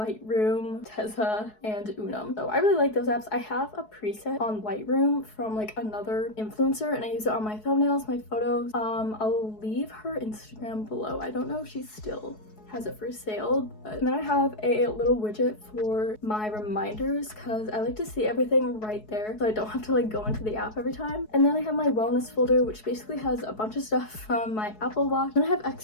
Tezza, and Unum. So I really like those apps. I have a preset on Lightroom from like another influencer and I use it on my thumbnails, my photos. I'll leave her Instagram below. I don't know if she's still has it for sale. And then I have a little widget for my reminders because I like to see everything right there so I don't have to like go into the app every time. And then I have my wellness folder, which basically has a bunch of stuff from my Apple Watch. Then I have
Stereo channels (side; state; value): right; late; 4.7 ms